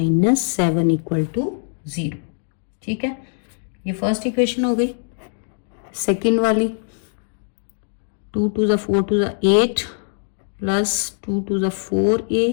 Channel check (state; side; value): silent; right; digital silence